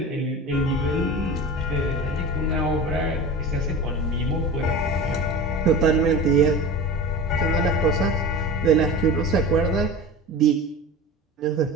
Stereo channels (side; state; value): both; normal; correlation 0.31